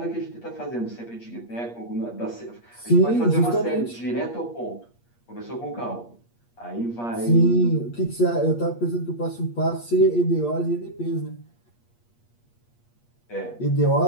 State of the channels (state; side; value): late; right; 8.5 ms